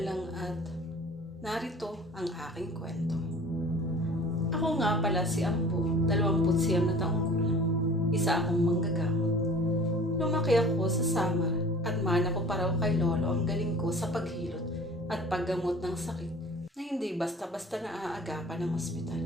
lang at narito ang aking kwento. Ako nga pala si Ambo, 29 na taong gulang. Isa akong manggagamot. Lumaki ako sa Samar at mana ko pa raw kay Lolo ang galing ko sa paghilot at paggamot ng sakit na hindi basta-basta naaagapan ng ospital.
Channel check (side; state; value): both; normal; correlation 0.45